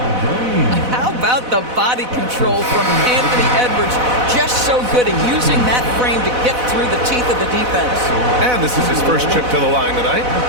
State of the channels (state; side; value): late; left; 4.0 ms